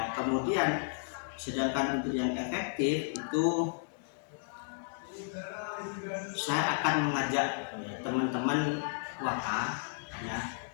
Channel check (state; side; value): silent; right; digital silence